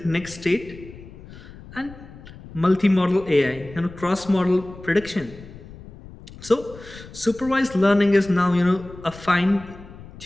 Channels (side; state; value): left; noise; rumble, 17 dB below the sound